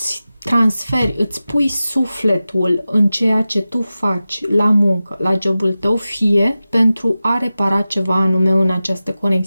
transferi, îți pui sufletul în ceea ce tu faci la muncă, la jobul tău, fie pentru a repara ceva anume în această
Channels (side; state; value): both; inverted; correlation -0.95